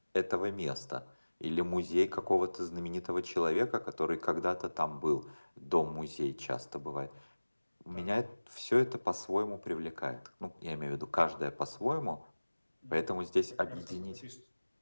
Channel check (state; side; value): inverted; both; correlation -1.00